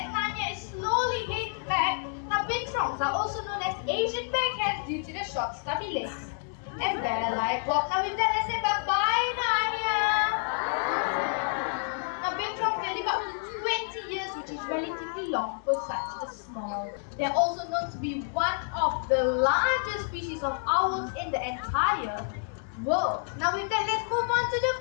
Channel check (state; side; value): silent; right; 59 dB below the other